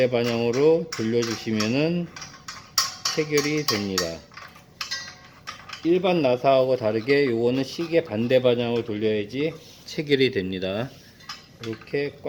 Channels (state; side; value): identical; both; correlation 1.00